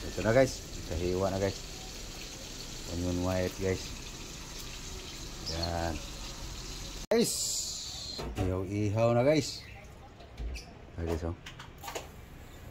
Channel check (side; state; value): both; identical; correlation 1.00